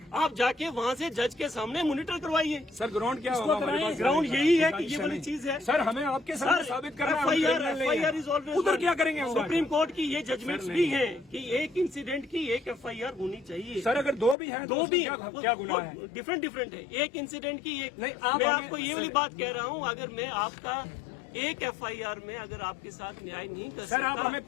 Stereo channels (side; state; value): right; drops out; at 14.4 s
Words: आप जाके वहाँ से जज के सामने मॉनिटर करवाइए। सर ग्राउंड क्या होगा हमारे पास? ग्राउंड यही है कि ये वाली चीज है। सर हमें आपके सामने साबित करना है। FIR इज ऑलवेज, उधर क्या करेंगे हम? सुप्रीम कोर्ट की ये जजमेंट्स भी हैं कि एक इंसिडेंट की एक FIR होनी चाहिए। सर अगर दो भी हैं तो दो भी क्या गुनाह है? डिफरेंट है। एक इंसिडेंट की एक नहीं, मैं आपको ये वाली बात कह रहा हूँ, अगर मैं आपका एक FIR में अगर आपके साथ न्याय नहीं कर सकता, आप हमें